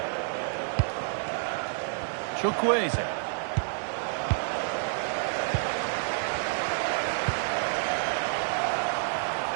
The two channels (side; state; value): left; silent; digital silence